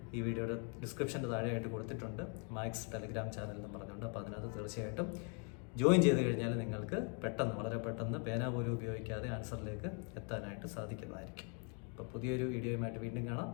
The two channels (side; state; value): right; quieter; 38.4 dB